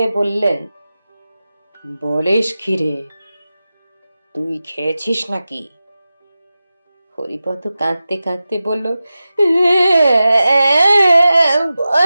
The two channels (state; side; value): inverted; both; correlation -0.94